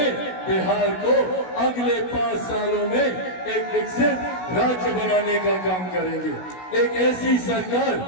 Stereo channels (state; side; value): late; right; 16 ms